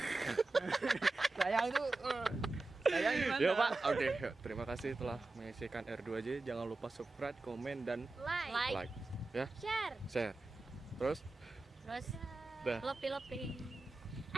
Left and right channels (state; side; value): quieter; left; 3.2 dB